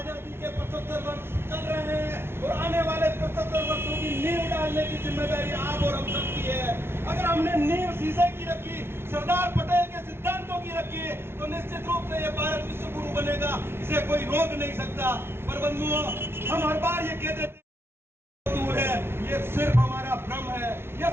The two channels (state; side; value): late; left; 0.12 ms